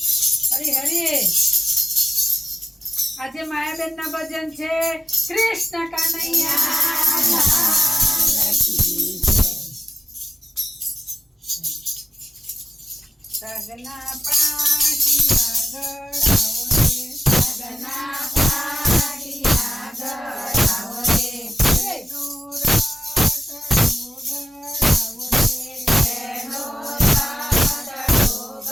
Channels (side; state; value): both; normal; correlation 0.92